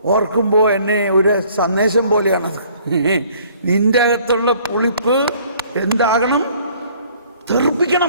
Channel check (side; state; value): both; inverted; correlation -0.57